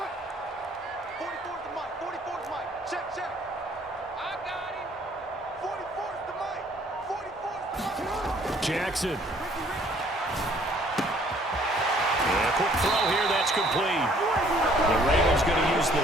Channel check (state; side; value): normal; both; correlation 0.60